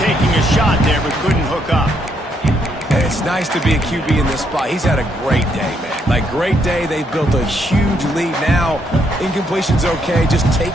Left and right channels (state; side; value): normal; both; correlation 0.74